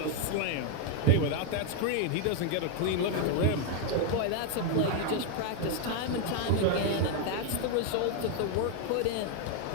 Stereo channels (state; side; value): different; both; correlation 0.00